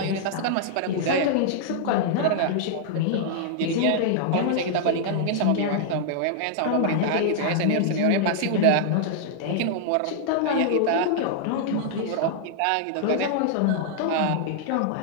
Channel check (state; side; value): different; both; correlation -0.01